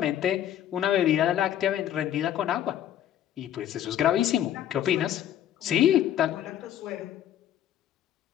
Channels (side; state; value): right; quieter; 11.1 dB